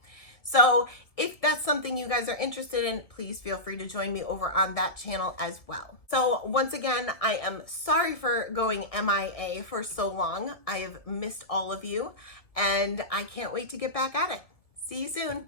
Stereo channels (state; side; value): late; right; 1.6 ms